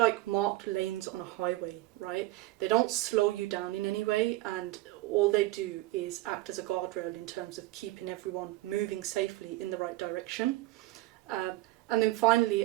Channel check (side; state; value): left; quieter; 17.8 dB